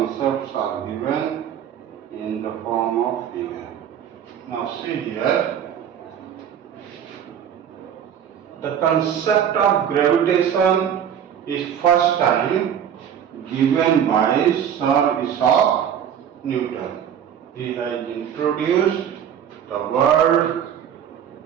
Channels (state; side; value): quieter; left; 9.0 dB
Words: are given in the form of figure. Now see here, the concept of gravitation is first time given by Sir Isaac Newton. He has introduced the word